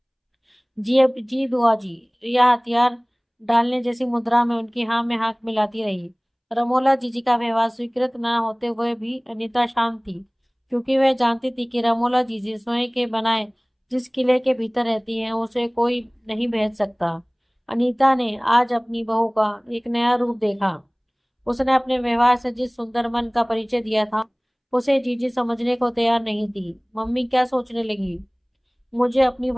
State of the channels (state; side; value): identical; both; correlation 1.00